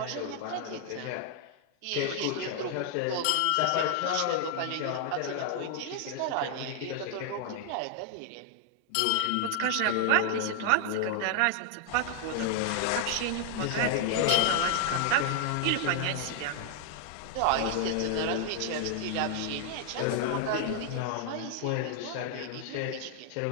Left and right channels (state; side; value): different; both; correlation 0.00